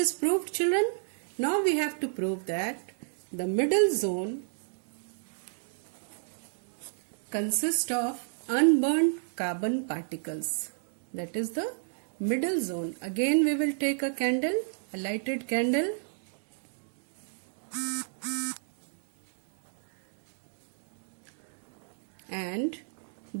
proved, children. Now we have to prove that the middle zone consists of unburnt carbon particles. That is the middle zone. Again we will take a candle, a lighted candle, and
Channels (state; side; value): silent; left; digital silence